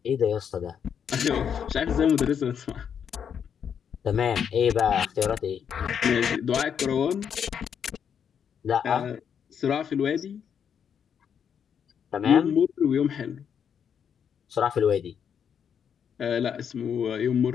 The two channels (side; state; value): right; quieter; 7.8 dB